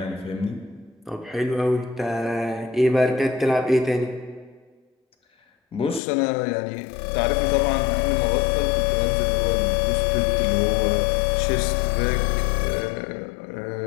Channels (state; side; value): drops out; right; at 6.0 s